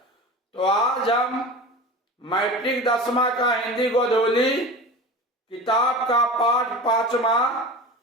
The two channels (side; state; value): both; normal; correlation 0.33